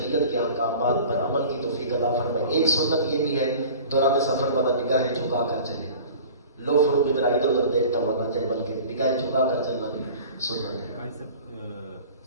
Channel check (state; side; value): inverted; both; correlation -0.42